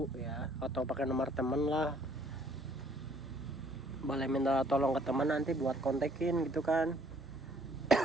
ya, atau pakai nomor temen lah. Boleh minta tolong ke teman nanti buat kontekin gitu kan.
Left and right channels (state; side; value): normal; both; correlation 0.61